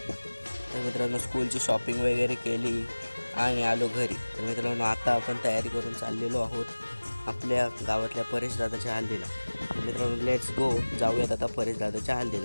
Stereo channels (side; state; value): both; inverted; correlation -1.00